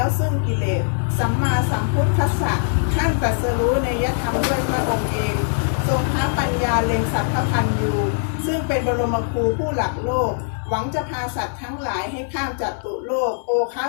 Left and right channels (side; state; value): right; silent; 65 dB below the other